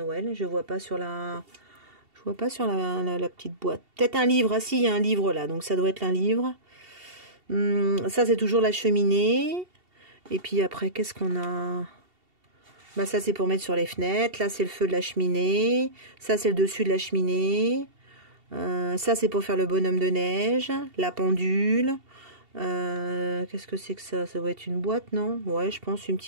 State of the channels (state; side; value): late; left; 2.7 ms